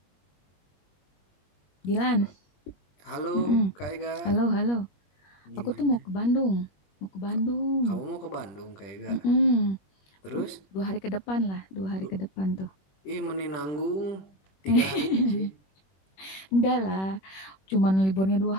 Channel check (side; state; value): right; late; 21 ms